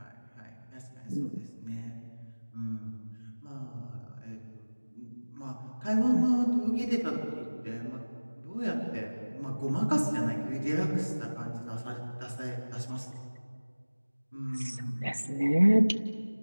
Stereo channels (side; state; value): both; inverted; correlation -1.00